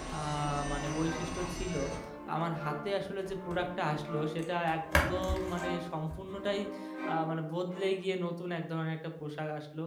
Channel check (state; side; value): identical; both; correlation 1.00